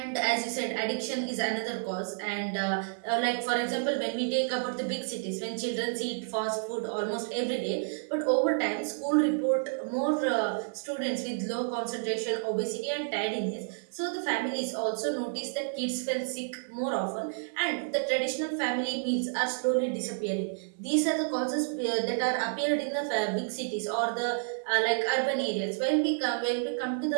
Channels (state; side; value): silent; left; 58 dB below the other